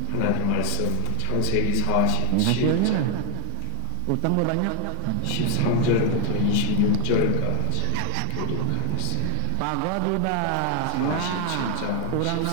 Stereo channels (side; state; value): both; different; correlation -0.01